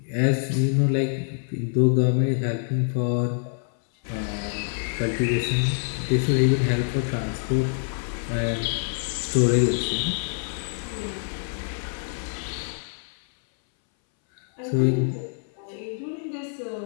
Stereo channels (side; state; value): right; silent; 60 dB below the other